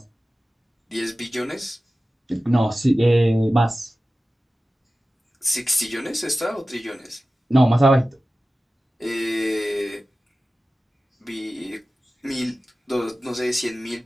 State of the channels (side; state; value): both; normal; correlation 0.95